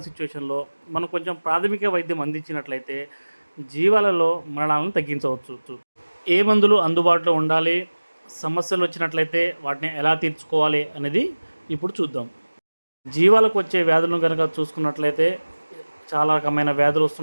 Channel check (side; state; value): both; inverted; correlation -1.00